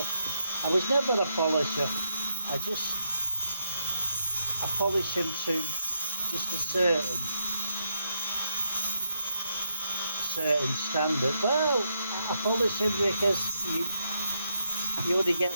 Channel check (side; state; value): both; inverted; correlation -0.80